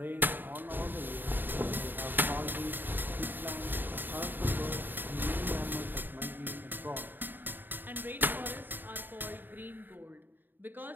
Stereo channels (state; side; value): late; left; 0.092 ms